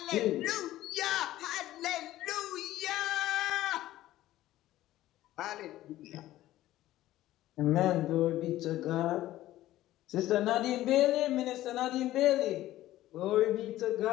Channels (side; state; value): right; quieter; 14.9 dB